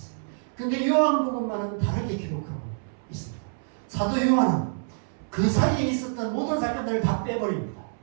그런데 요한복음만은 다르게 기록하고 있습니다. 사도 요한은 그 사이에 있었던 모든 사건들을 다 빼버립니다.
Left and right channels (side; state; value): left; silent; 60 dB below the other